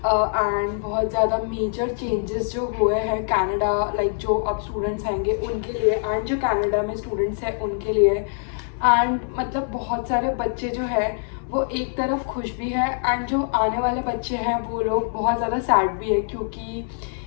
and बहुत ज़्यादा मेजर चेंजेस जो हुए हैं कनाडा लाइक जो अब स्टूडेंट्स आएंगे उनके लिए एंड जो कनाडा में स्टूडेंट्स हैं उनके लिए एंड मतलब बहुत सारे बच्चे जो है वो एक तरफ खुश भी है एंड जो आने वाले बच्चे हैं वो लोग बहुत ज़्यादा सैड भी है क्योंकि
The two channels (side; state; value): right; silent; digital silence